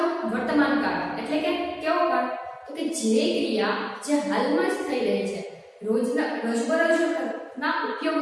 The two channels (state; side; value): identical; both; correlation 1.00